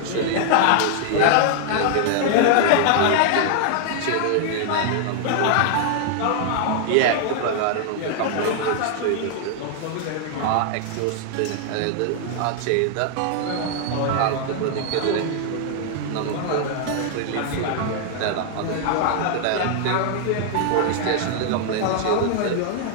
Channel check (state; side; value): different; both; correlation 0.00